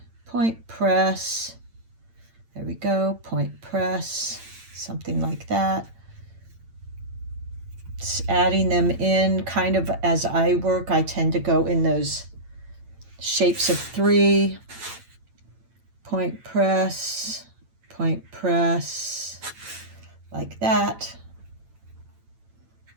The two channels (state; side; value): late; left; 8.9 ms